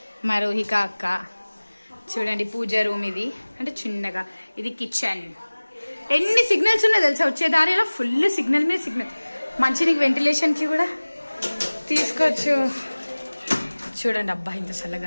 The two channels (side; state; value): both; inverted; correlation -1.00